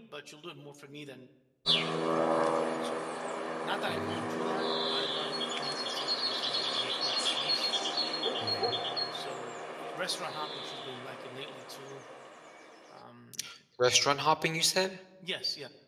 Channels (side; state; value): both; identical; correlation 1.00